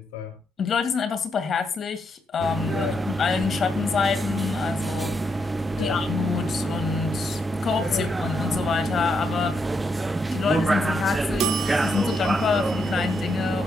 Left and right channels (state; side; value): normal; both; correlation 0.80